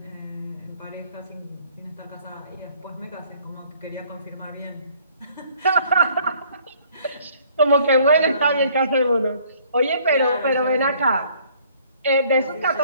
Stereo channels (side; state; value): both; inverted; correlation -0.59